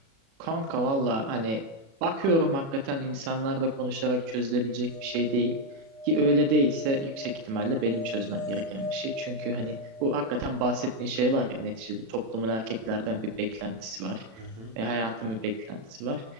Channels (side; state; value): left; late; 36 ms